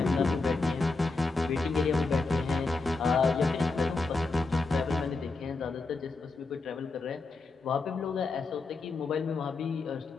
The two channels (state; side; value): quieter; right; 3.7 dB